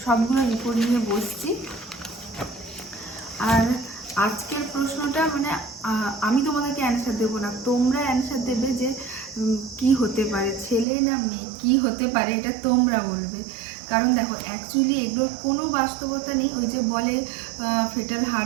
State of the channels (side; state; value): left; drops out; at 10.9 s